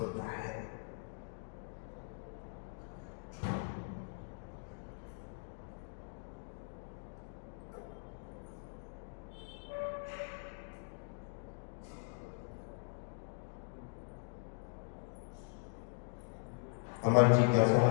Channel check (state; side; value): silent; right; digital silence